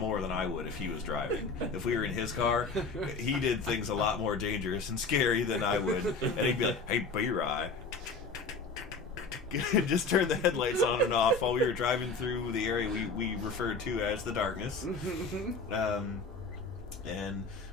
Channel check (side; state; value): right; quieter; 4.0 dB